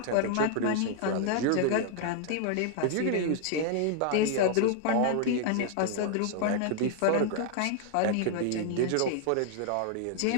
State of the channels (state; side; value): different; both; correlation 0.00